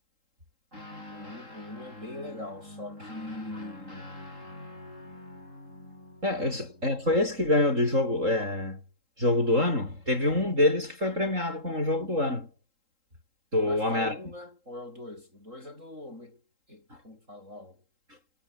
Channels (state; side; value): late; left; 3.8 ms